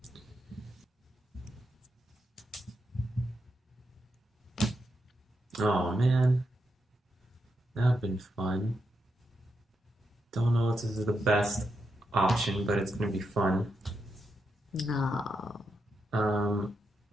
Oh man, that would have been fun. Don't know if this is the best option, but it's gonna be fun. No.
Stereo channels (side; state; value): both; normal; correlation 0.84